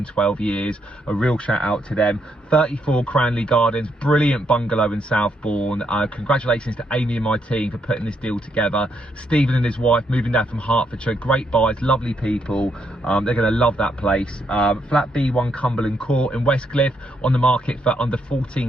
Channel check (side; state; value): both; normal; correlation 0.76